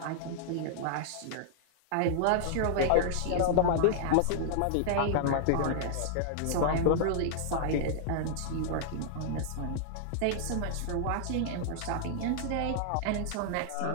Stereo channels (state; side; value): different; both; correlation -0.01